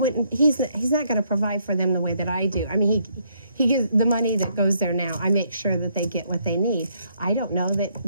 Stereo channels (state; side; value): inverted; both; correlation -0.71